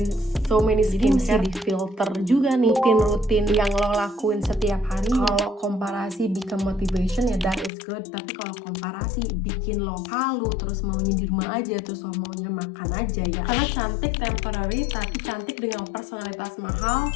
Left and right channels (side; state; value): right; drops out; at 7.7 s